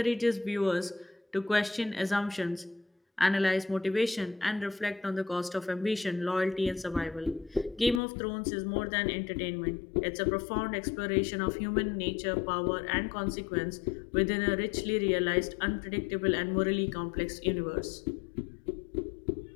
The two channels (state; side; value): drops out; right; at 8.0 s